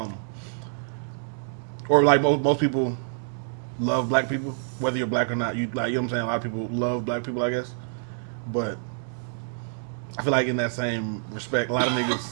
or like most people love black people, whether you're black or not. You know what I'm saying? A lot of people love black people, I guess, but I feel like in that same respect, a lot of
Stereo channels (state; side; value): silent; left; digital silence